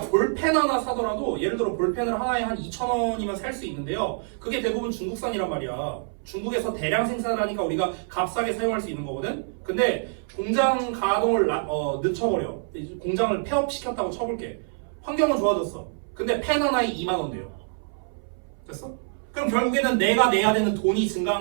하나 사더라도 예를 들어 볼펜을 하나에 한 2,000원이면 살 수 있는데요. 그게 대부분 중국산이란 말이야. 중국에서 대량 생산을 하니까 우리가 값싸게 사용할 수 있는 거거든. 근데 공장 가동을 늦춰버려. 공장을 폐업시켰다고 쳐볼게. 환경은 좋아졌어. 근데 펜 하나에 2만 원 돼요. 됐어? 그럼 결국에는 내가 내야 되는 돈이 증가한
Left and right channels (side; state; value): left; silent; 61 dB below the other